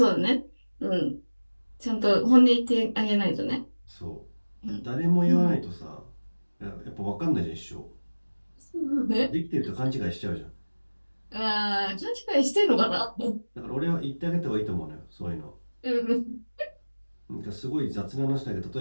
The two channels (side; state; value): both; inverted; correlation -1.00